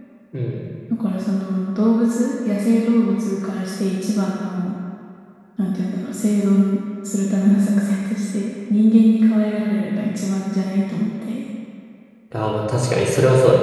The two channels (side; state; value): both; identical; correlation 1.00